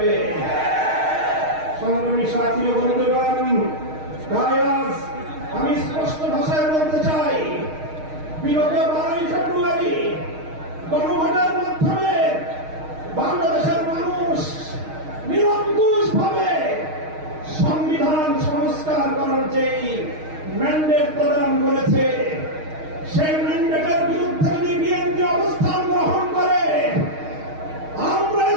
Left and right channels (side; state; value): left; late; 6.4 ms